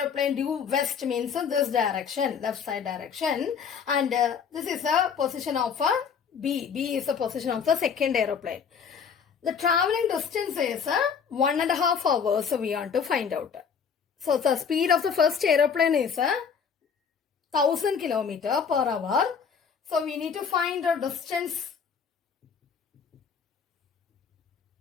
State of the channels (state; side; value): quieter; right; 6.6 dB